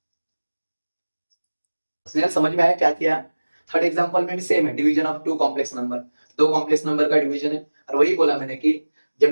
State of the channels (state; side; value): inverted; both; correlation -1.00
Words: समझ में आया क्या किया। थर्ड एग्जांपल में भी सेम है, division of two complex number, दो कॉम्प्लेक्स नंबर का डिवीजन है। और वही बोला मैंने कि